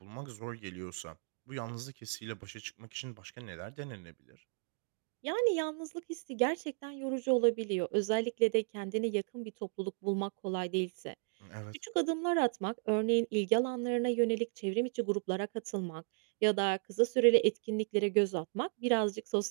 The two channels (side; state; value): left; silent; 54 dB below the other